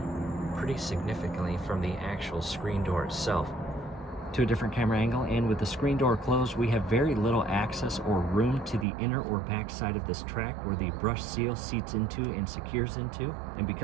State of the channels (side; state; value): left; drops out; at 8.8 s